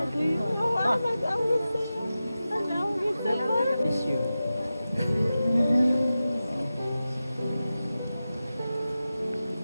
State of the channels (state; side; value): inverted; both; correlation -0.94